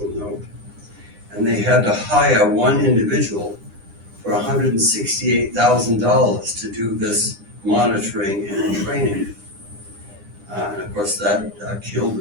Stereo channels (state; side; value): late; left; 9.9 ms